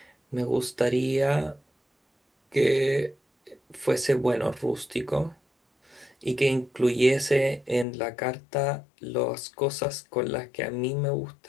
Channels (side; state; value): right; drops out; at 7.9 s